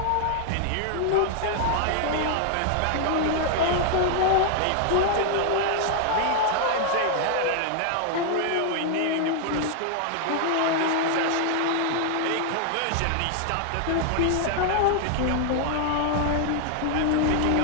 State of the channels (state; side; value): different; both; correlation 0.00